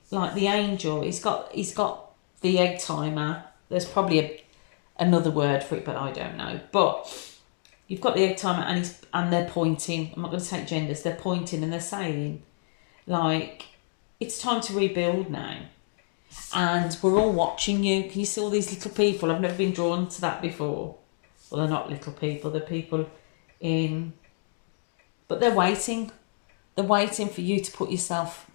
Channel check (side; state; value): right; silent; 59 dB below the other